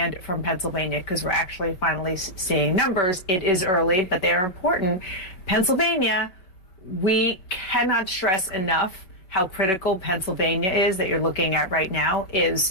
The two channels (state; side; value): late; right; 5.3 ms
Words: from Pennsylvania, because we're actually finally seeing numbers. It is early, but they are important. Pennsylvania, we cannot stress enough how critical Pennsylvania is, that you're looking at right now,